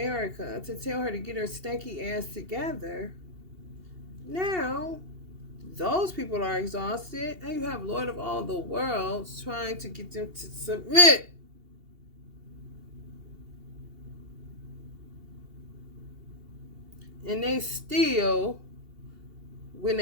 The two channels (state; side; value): late; left; 2.8 ms